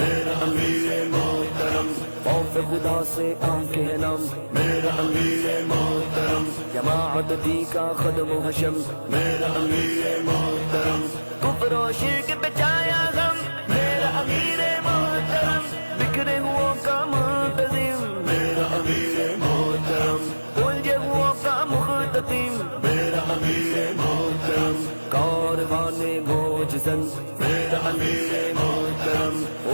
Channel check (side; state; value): both; inverted; correlation -1.00